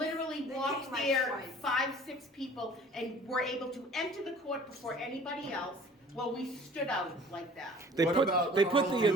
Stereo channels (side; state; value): both; normal; correlation 0.48